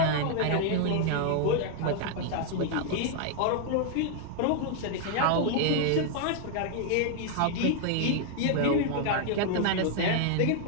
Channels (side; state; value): both; different; correlation 0.00